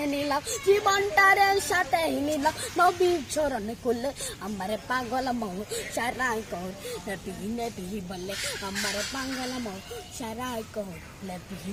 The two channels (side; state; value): both; identical; correlation 1.00